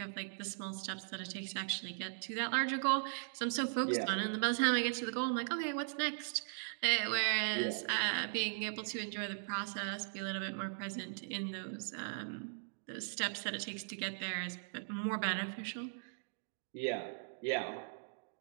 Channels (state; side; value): silent; left; digital silence